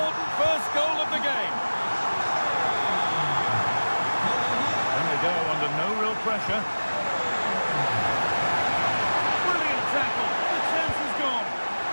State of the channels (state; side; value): inverted; both; correlation -1.00